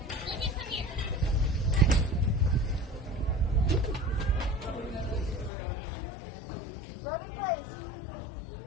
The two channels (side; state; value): right; drops out; at 5.5 s